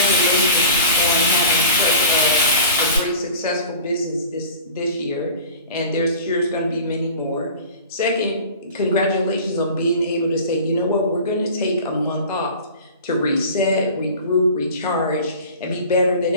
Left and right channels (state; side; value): inverted; both; correlation -0.40